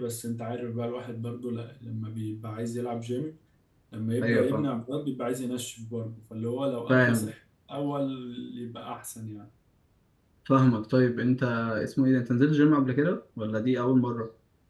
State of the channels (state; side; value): identical; both; correlation 1.00